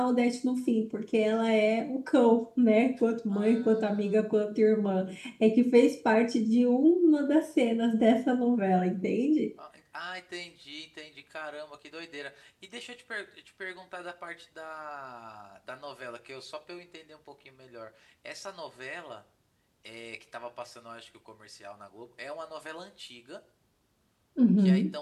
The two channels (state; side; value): identical; both; correlation 1.00